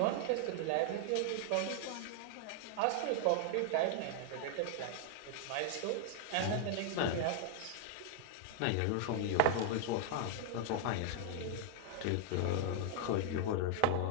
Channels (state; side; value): different; both; correlation 0.00